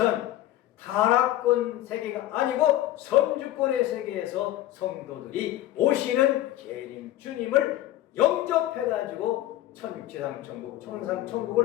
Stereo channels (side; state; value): right; quieter; 14.3 dB